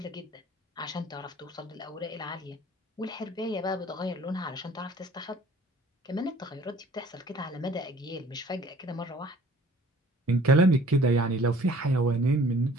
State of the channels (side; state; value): both; normal; correlation 0.53